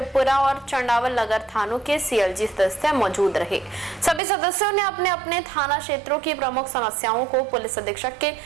और चंडावल नगर थानों के सीएलजी सदस्य मौजूद रहे। सभी सदस्यों ने अपने अपने थाना क्षेत्रों की प्रमुख समस्याओं को पुलिस अधीक्षक के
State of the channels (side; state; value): left; drops out; at 4.2 s